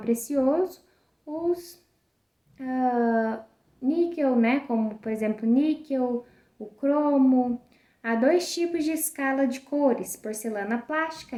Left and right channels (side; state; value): both; identical; correlation 1.00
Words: os níquel, como por exemplo níquel, o cromo. Há 2 tipos de escala de cores, porcelana plástica,